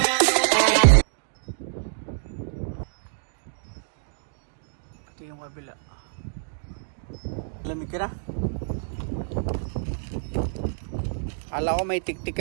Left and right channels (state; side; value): silent; left; digital silence